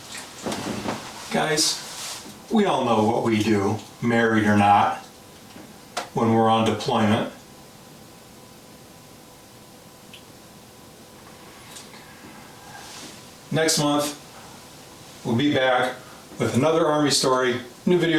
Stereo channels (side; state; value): both; identical; correlation 1.00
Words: Guys, we all know what we do, married or not, when we're on deployment. Next month, we'll be back with another Army story, new